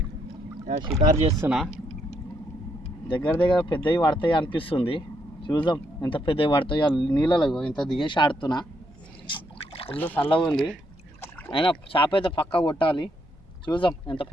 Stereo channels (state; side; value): normal; both; correlation 0.75